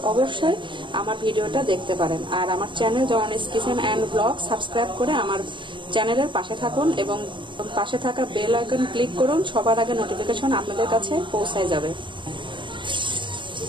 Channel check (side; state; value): left; late; 0.23 ms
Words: অবশ্যই আমার ভিডিওটা দেখতে পারেন। আর আমার channel Janani's Kitchen and Blog subscribe করে আমার চ্যানেলের পাশে থাকুন এবং পাশে থাকা বেল আইকন ক্লিক করুন। সবার আগে নোটিফিকেশন আপনাদের কাছে পৌঁছায় যাবে।